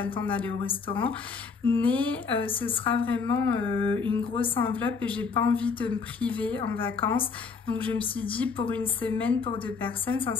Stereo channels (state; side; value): quieter; right; 5.1 dB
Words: le temps d'aller au restaurant. Mais ce sera vraiment une grosse enveloppe et j'ai pas envie de me priver en vacances. Donc je me suis dit pour une semaine pour deux personnes,